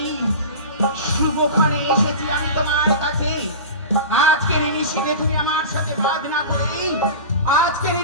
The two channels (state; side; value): inverted; both; correlation -0.31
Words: শুভক্ষণে এসেছি আমি তোমার কাছে। আজকের নিশিতে তুমি আমার সাথে বাদ না করে আজকের